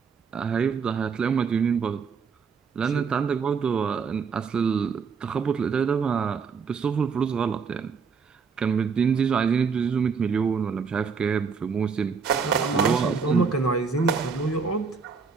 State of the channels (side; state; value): left; quieter; 5.6 dB